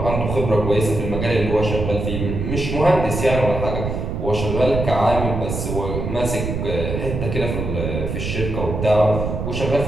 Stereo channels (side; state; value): right; noise; rumble, 3 dB below the sound